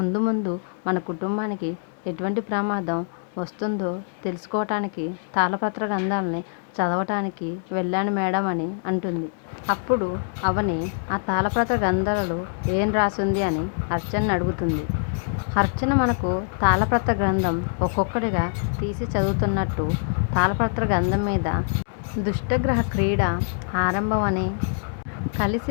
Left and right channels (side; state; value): right; silent; digital silence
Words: ముందు మన కుటుంబానికి ఎటువంటి ప్రమాదం వస్తుందో తెలుసుకోవటానికి తాళపత్ర గ్రంథాలని చదవటానికి వెళ్ళాను మేడం అని అంటుంది. అప్పుడు అవని, ఆ తాళపత్ర గ్రంథాలలో ఏం రాసింది అని అర్చనని అడుగుతుంది. అర్చన మనకు తాళపత్ర గ్రంథం ఒక్కొక్కటిగా తీసి చదువుతున్నట్టు తాళపత్ర గ్రంథం మీద దుష్టగ్రహ క్రీడ ఆరంభం అని,